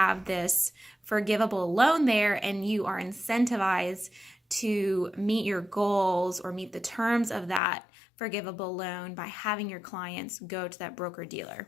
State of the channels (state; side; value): drops out; right; at 7.6 s